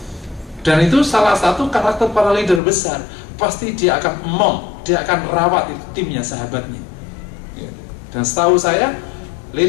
Dan itu salah satu karakter para leader besar. Pasti dia akan dia akan rawat itu timnya, sahabatnya. Dan setahu saya,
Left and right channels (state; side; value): drops out; right; at 2.6 s